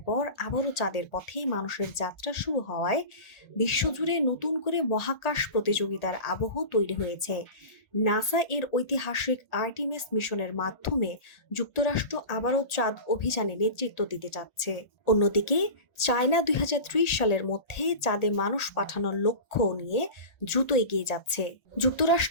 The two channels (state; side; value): late; right; 1.4 ms